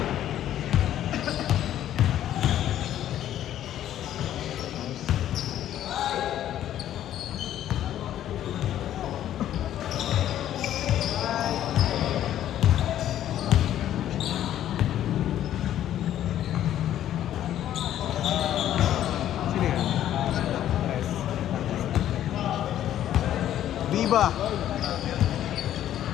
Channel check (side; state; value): right; quieter; 11.7 dB